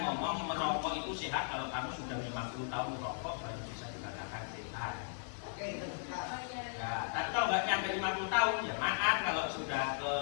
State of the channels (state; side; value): silent; right; 53 dB below the other